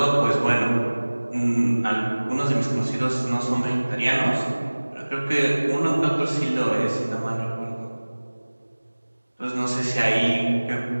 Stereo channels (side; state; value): both; inverted; correlation -1.00